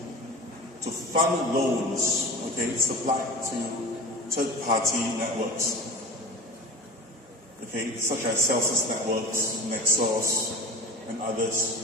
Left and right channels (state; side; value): normal; both; correlation 0.35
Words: to fund loans, supplied to third-party networks, such as Celsius Networks, Nexus, and